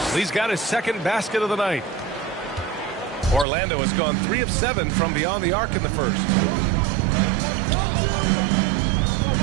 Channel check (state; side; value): drops out; left; at 3.5 s